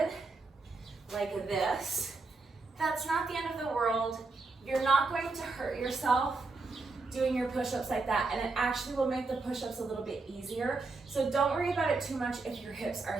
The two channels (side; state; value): left; quieter; 3.8 dB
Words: like this, that's not the end of the world. You're not going to hurt yourself doing your push-ups like that, and it actually will make the push-ups a little bit easier. So don't worry about it too much if your hips are